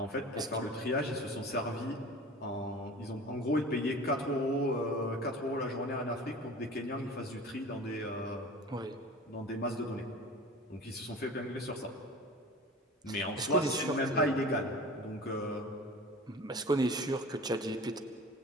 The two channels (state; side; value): normal; both; correlation 0.39